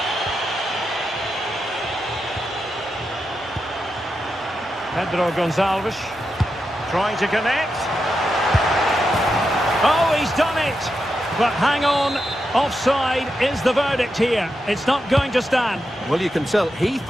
Pedro Gonçalves trying to connect. Oh, he's done it! But hang on, offside is the verdict here. It's not going to stand. Well, you can tell he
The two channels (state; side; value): normal; both; correlation 0.87